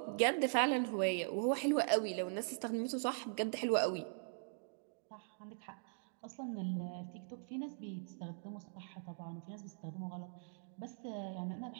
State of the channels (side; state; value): left; silent; digital silence